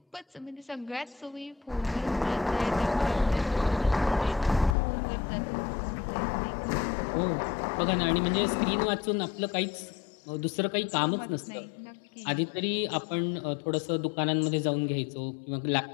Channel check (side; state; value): right; drops out; at 4.8 s